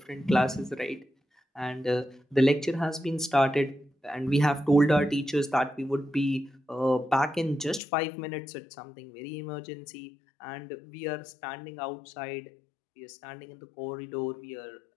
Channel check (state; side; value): drops out; right; at 7.8 s